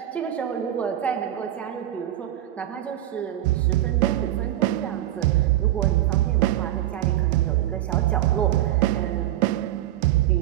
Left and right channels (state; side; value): quieter; left; 13.4 dB